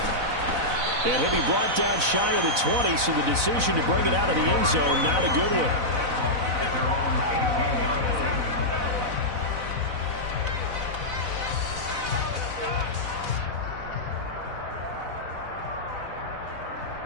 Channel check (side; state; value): left; late; 4.0 ms